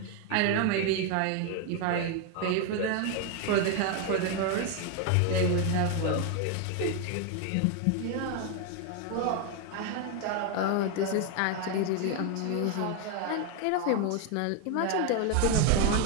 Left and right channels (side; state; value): both; different; correlation 0.01